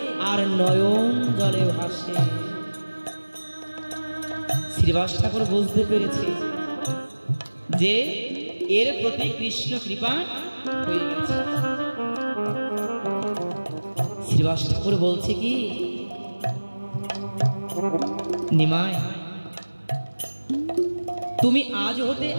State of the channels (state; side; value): inverted; both; correlation -1.00